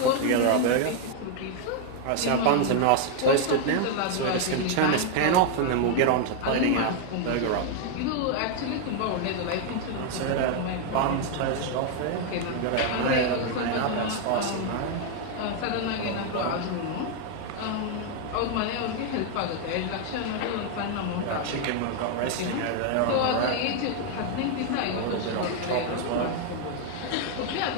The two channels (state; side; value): different; both; correlation 0.00